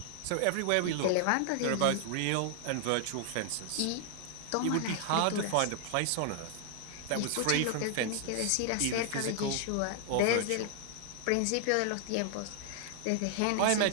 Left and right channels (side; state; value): both; different; correlation 0.00